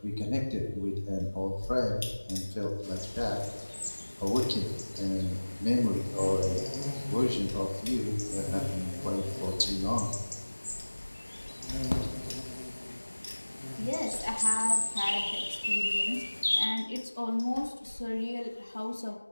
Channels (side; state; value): both; inverted; correlation -1.00